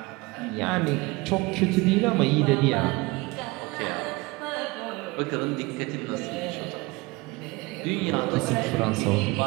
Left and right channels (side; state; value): left; quieter; 23.7 dB